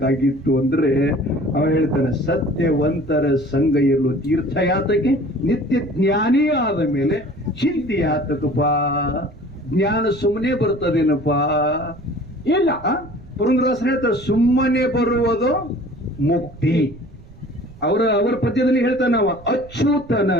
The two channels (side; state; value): right; noise; rumble, 21 dB below the sound